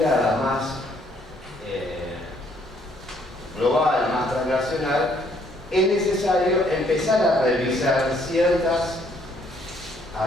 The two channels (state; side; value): normal; both; correlation 0.66